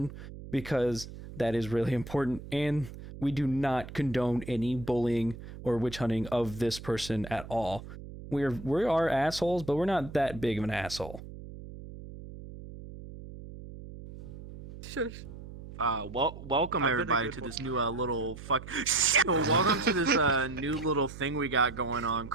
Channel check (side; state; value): right; noise; hum, 13 dB below the sound